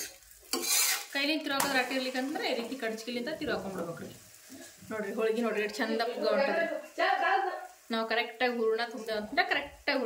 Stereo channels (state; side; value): identical; both; correlation 1.00